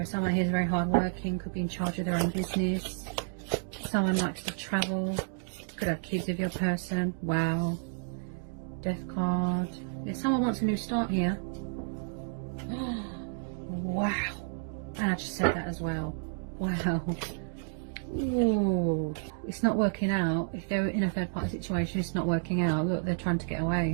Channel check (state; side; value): silent; left; digital silence